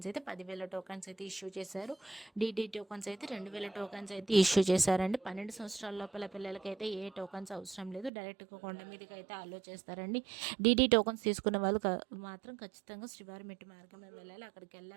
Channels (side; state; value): left; drops out; at 8.1 s